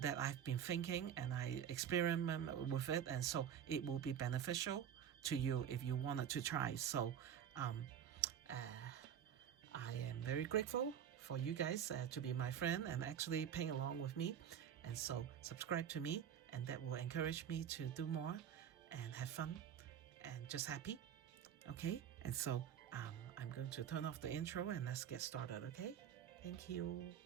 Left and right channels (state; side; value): quieter; left; 9.1 dB